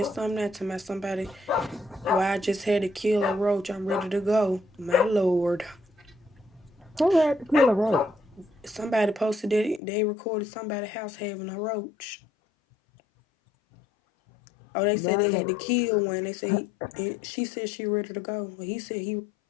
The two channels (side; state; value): right; drops out; at 9.8 s